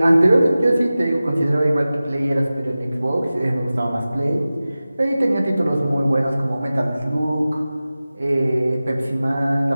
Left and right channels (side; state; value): both; inverted; correlation -0.96